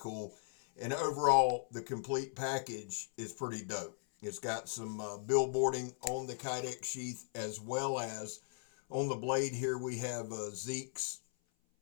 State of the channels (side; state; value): right; silent; 53 dB below the other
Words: And overall, the complete package is pretty dope. It's got some billboarding on the Kydex sheath, as well as on the blade here we have Zeke's